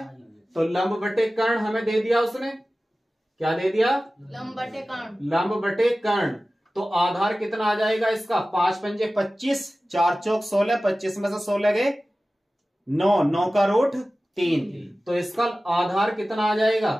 तो लंब बटे कर्ण हमें दे दिया उसने, क्या दे दिया लंब बटे कर्ण। लंब बटे कर्ण, तो आधार कितना आ जाएगा इसका, 5 पंजे 25, 4 चौक 16, 25 में से 16 गए 9, 9 का रूट 3, तो इसका आधार कितना आ जाएगा,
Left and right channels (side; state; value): both; normal; correlation 0.96